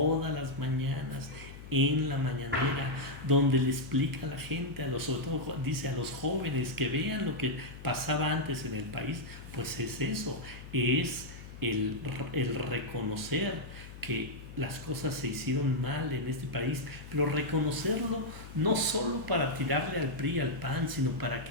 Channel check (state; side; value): noise; left; hum, 14 dB below the sound